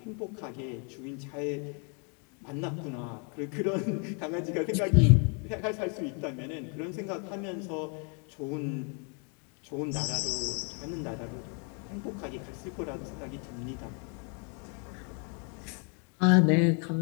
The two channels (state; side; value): quieter; right; 38.2 dB